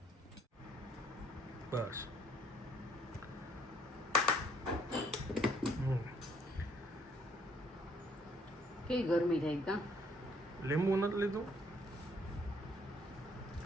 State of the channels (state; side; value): normal; both; correlation 0.66